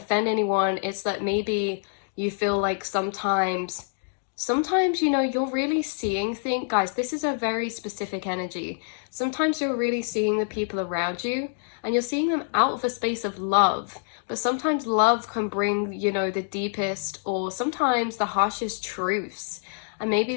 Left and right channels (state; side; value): silent; right; digital silence